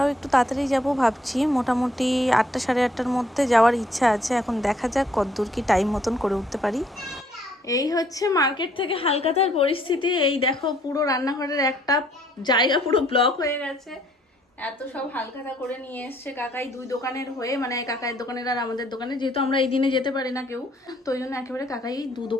একটু তাড়াতাড়ি যাব ভাবছি, মোটামুটি 8টা 8:30-র মধ্যে যাওয়ার ইচ্ছা আছে। এখন দেখা যাক কতদূর কি টাইম মতন করে উঠতে পারি। এই হচ্ছে মার্কেট থেকে হালকাতার পরিস্থিতি। এই দেখো পুরো রান্নাঘরের একটা জায়গা পুরো ব্লক হয়ে গেছে, এত সব হালখাতা করে নিয়ে এসছে কাকাই দুই দোকানের হয়ে, মানে কাকাইয়ের দোকানের আর আমাদের দোকানে, যেহেতু আমরা এই দিনে যেতে পারি না কেউ, তো ওই জন্য একেবারে কাকাই দু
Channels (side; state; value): both; normal; correlation 0.65